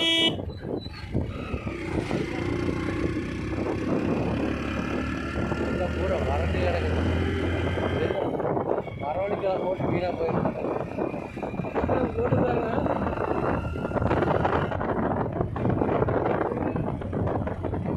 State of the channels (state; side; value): identical; both; correlation 1.00